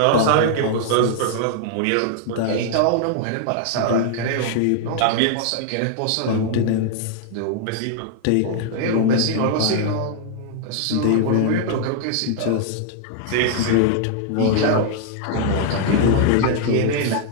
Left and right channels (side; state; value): both; different; correlation 0.00